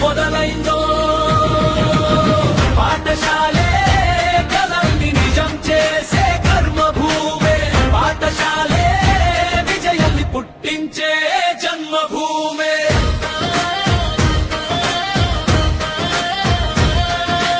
మొదలైందో. పాఠశాలే కలల్ని నిజం చేసే కర్మభూమే, పాఠశాలే విజయాన్ని పుట్టించే జన్మభూమే.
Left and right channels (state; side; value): identical; both; correlation 1.00